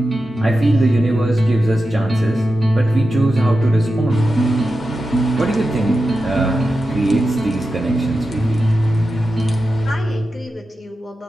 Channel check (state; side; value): normal; both; correlation 0.91